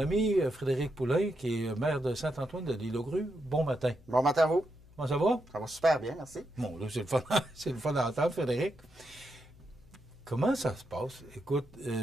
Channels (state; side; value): noise; left; hum, 24 dB below the sound